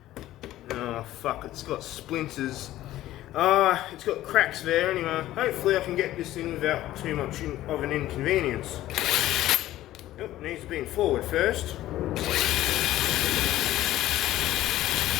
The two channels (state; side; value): quieter; right; 14.6 dB